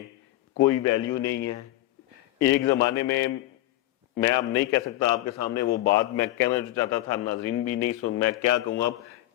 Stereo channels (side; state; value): right; quieter; 16.0 dB